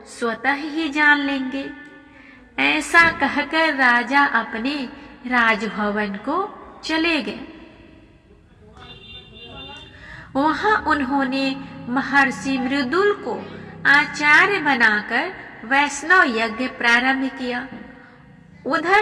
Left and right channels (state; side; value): identical; both; correlation 1.00